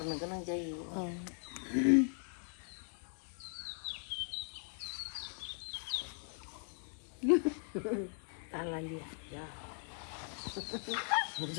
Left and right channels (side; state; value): right; silent; 52 dB below the other